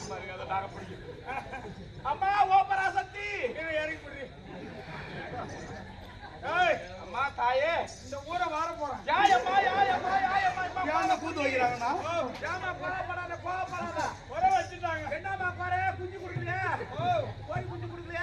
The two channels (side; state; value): both; identical; correlation 1.00